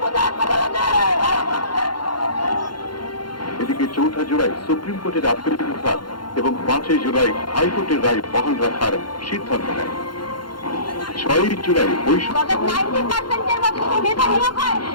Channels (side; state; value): right; late; 0.72 ms